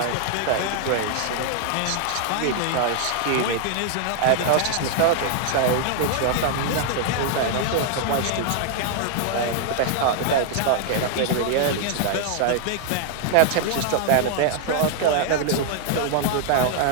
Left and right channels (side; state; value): both; different; correlation 0.00